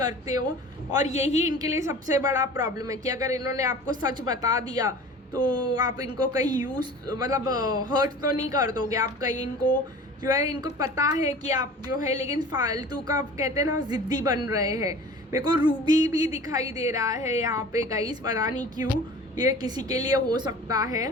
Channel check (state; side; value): normal; both; correlation 0.41